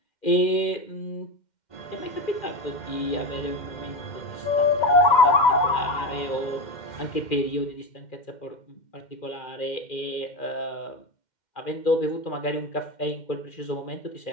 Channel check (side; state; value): right; late; 2.1 ms